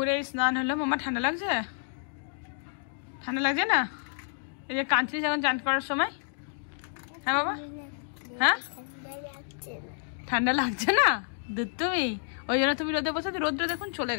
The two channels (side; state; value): right; silent; digital silence